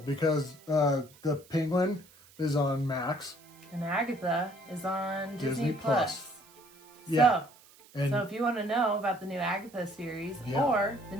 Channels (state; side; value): noise; right; hiss, 25 dB below the sound